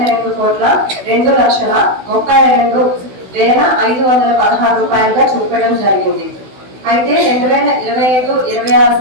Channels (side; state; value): left; late; 16 ms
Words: రూపాయలుగా చూపడం జరిగింది. అయితే 2025-26